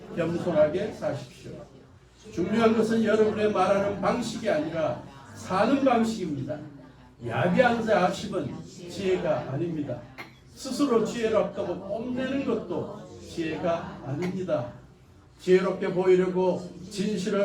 겸손하게 사십시오. 중요한 것은 여러분의 말하는 방식이 아니라 사는 방식입니다. 야비한 자십은 지혜가 아닙니다. 스스로 지혜롭다고 뽐내는 것도 지혜가 아닙니다. 지혜롭게 보이려고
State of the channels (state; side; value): identical; both; correlation 1.00